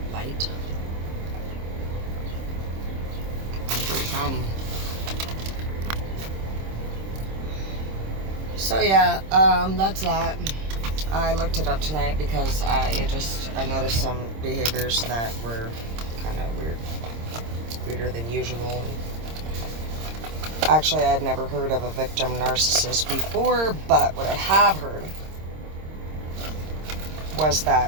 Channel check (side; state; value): left; late; 26 ms